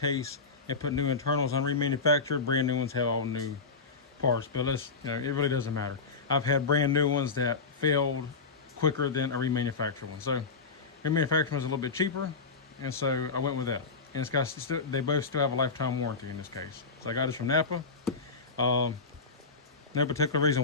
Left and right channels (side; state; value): right; quieter; 4.5 dB